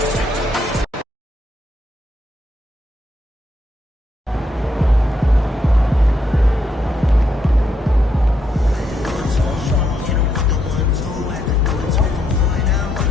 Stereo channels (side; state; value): both; normal; correlation 0.77